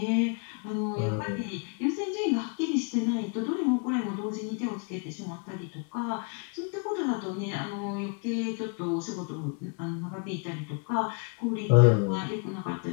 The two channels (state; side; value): quieter; right; 36.9 dB